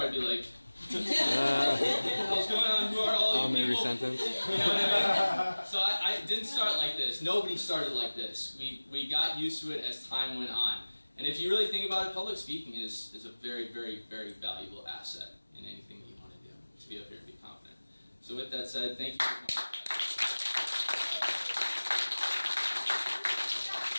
be like. What's going on? Who are all you people? Sentence. You know what I mean? So I didn't start like this. Nobody started like this. We got used to it as time went on. And if you really think about it, public speaking is a very, very, very valuable asset in anything that you want to do, to be up here and be confident. So with that said, thank you very much.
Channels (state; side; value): inverted; both; correlation -1.00